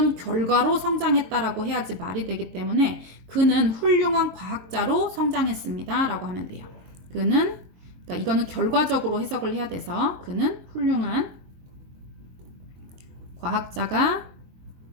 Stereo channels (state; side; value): late; left; 22 ms